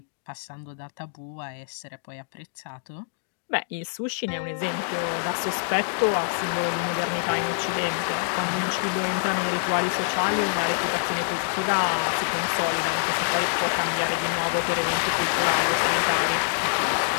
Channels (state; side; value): silent; right; digital silence